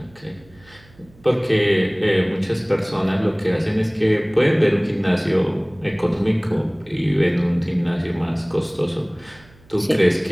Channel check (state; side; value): noise; right; hum, 27 dB below the sound